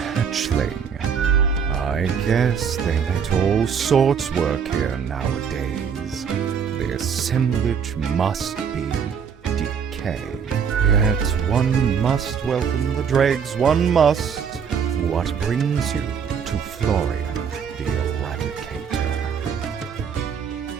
I guess they let all sorts work here nowadays. The assemblage must be decay. Yet one must welcome the dregs, one must. What brings you to Florian the Eradicator?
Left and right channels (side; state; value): left; quieter; 7.0 dB